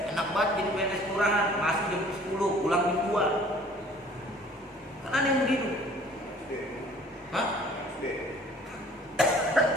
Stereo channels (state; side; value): normal; both; correlation 0.53